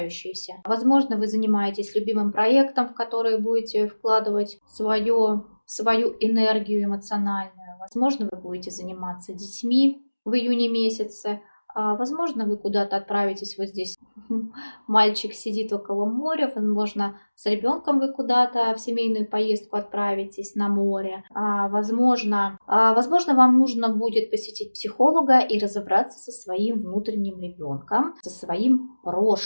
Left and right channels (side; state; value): both; inverted; correlation -1.00